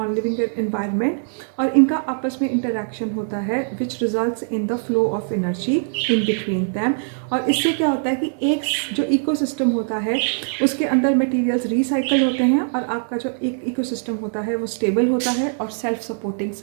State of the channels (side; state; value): left; silent; digital silence